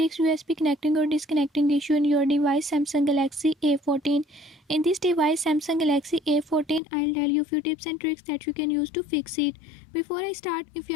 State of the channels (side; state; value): right; drops out; at 6.8 s